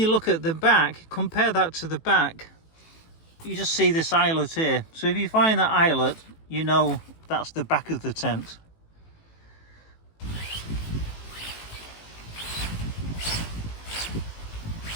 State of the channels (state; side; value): late; right; 18 ms